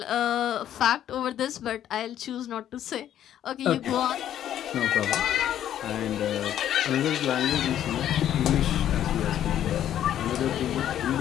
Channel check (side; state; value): right; quieter; 11.0 dB